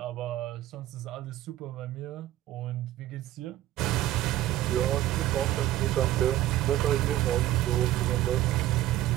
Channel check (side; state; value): left; quieter; 14.3 dB